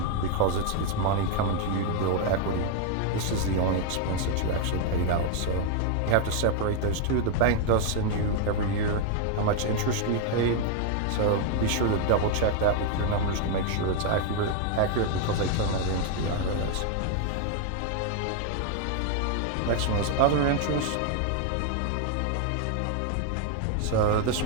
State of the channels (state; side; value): different; both; correlation 0.00